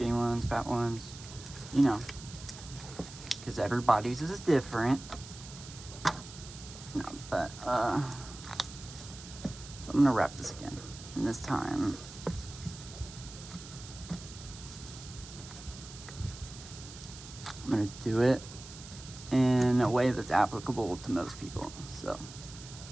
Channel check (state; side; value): noise; right; hiss, 15 dB below the sound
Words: ones, fat ones, you know, because everybody's is different. No, but so I'm gonna wrap this again. And this time, I'm gonna do it in a way that's applicable to most people.